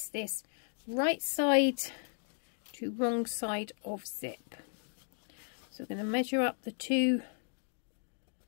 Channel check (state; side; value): silent; right; 54 dB below the other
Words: this right side to wrong side of zip. So we're going to measure up the two